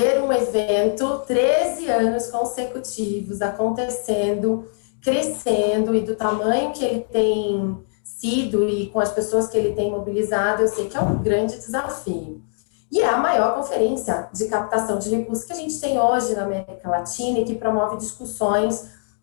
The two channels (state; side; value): silent; right; 60 dB below the other